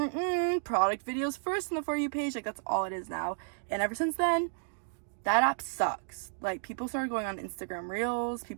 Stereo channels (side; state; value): left; silent; digital silence